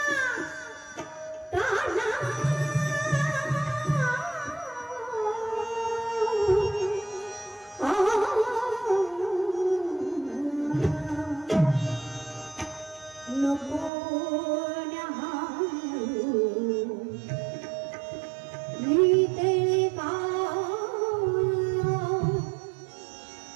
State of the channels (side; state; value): left; drops out; at 13.9 s